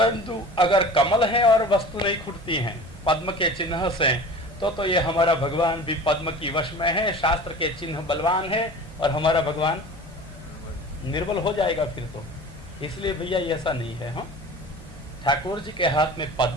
अगर कमल है और वस्तु नहीं खुटती हैं पद्म के चिन्ह से, तो ये हमारा भगवान भी पद्म की वश में है। शास्त्र के चिन्ह बलवान है और हमारा भगवान निर्बल हो जाएगा फिर तो। इसलिए भैया ऐसा नहीं है। हाँ, ठाकुर जी के हाथ में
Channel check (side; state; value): both; normal; correlation 0.39